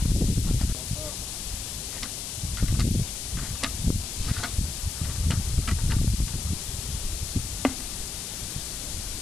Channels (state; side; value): noise; left; hiss, 5 dB below the sound